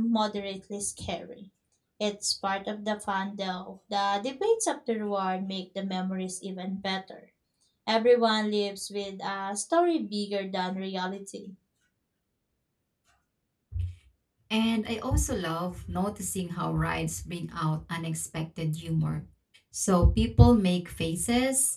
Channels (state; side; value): identical; both; correlation 1.00